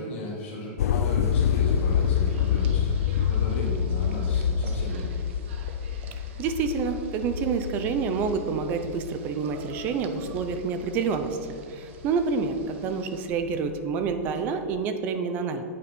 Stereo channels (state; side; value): normal; both; correlation -0.20